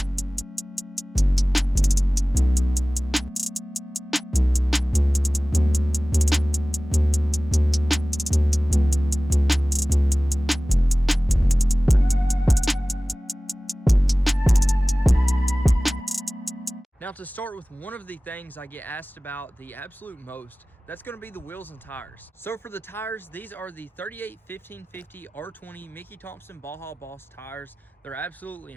Now, to start with one of the things I get asked about the absolute most, that's going to be the wheels and tires. So for the tires, these are the 38 1550 R20 Mickey Thompson Baja Boss tires. They're absolutely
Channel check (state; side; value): normal; both; correlation 0.98